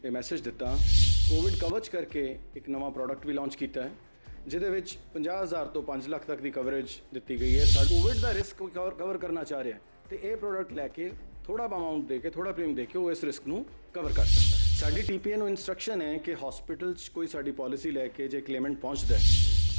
ਇਹ ਮੈਸੇਜ ਦਿੱਤਾ। ਕੋਵਿਡ ਕਵਚ ਕਰਕੇ ਇੱਕ ਨਵਾਂ ਪ੍ਰੋਡਕਟ ਵੀ ਲਾਂਚ ਕੀਤਾ ਹੈ ਜਿਹਦੇ ਵਿੱਚ 50,000 ਤੋਂ 5 ਲੱਖ ਤੱਕ ਦੀ ਕਵਰੇਜ ਦਿੱਤੀ ਗਈ ਹੈ। ਕੋਵਿਡ ਦਾ ਰਿਸਕ ਕਵਰ ਕਰਨਾ ਚਾਹ ਰਿਹਾ ਤੇ ਇਹ ਪ੍ਰੋਡਕਟ ਲੈ ਕੇ ਥੋੜਾ ਅਮਾਉਂਟ ਦੇ ਕੇ, ਥੋੜਾ ਪ੍ਰੀਮੀਅਮ ਦੇ ਕੇ ਉਹ ਇਸ ਰਿਸਕ ਨੂੰ ਕਵਰ ਕਰ ਸਕਦਾ ਹੈ। ਸਾਡੀ ਟੀਪੀਏ ਨੂੰ ਇਨਸਟਰਕਸ਼ਨ ਹੈ ਕਿ ਹਸਪੀਟਲ 'ਚ ਕੋਈ ਸਾਡੀ ਪਾਲਿਸੀ ਲੈ ਕੇ ਜੇ ਕਲੇਮੈਂਟ ਪਹੁੰਚਦਾ ਹੈ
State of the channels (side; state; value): both; inverted; correlation -1.00